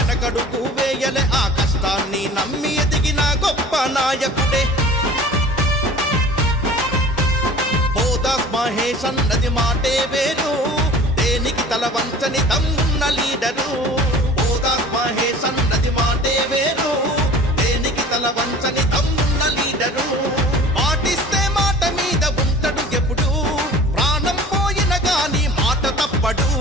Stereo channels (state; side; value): normal; both; correlation 0.44